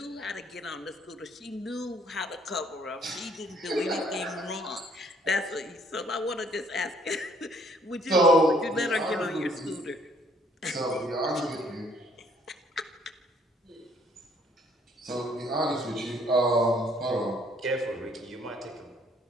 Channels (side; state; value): both; normal; correlation 0.63